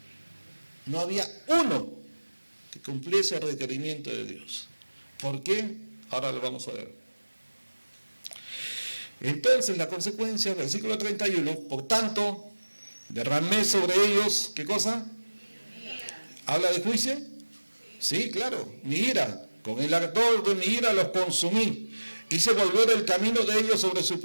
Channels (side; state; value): both; inverted; correlation -1.00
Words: no había uno que cumpliese el requerimiento de Dios. ¿Por qué? Ahora lo vamos a ver. Entonces la consecuencia, versículo 31, por tanto, derramé sobre ellos, ¿qué cosa? ¿Habla de juicio? Sí, claro, mi ira. Con el ardor de mi ira los consumí. Hice volver el camino de ellos sobre su